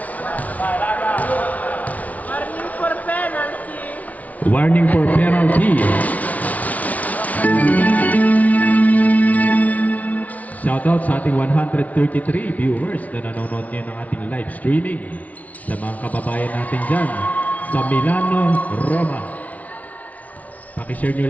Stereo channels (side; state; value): right; late; 0.071 ms